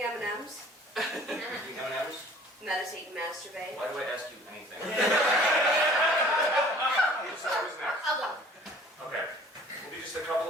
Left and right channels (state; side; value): normal; both; correlation 0.50